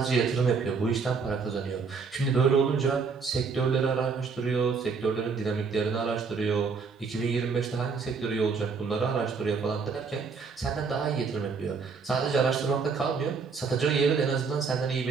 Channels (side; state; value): left; quieter; 5.2 dB